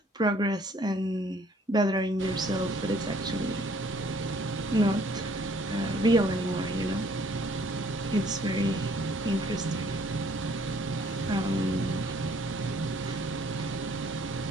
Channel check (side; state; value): both; normal; correlation 0.61